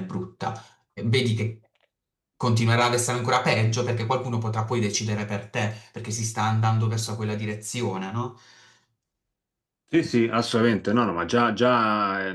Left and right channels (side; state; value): both; identical; correlation 1.00